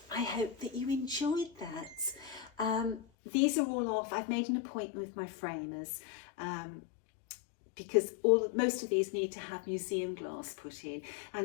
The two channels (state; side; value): drops out; right; at 3.0 s